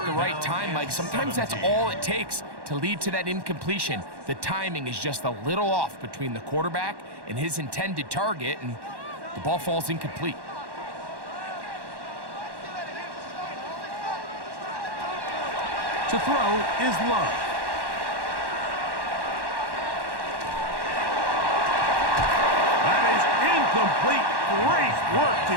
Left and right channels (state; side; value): late; left; 1.1 ms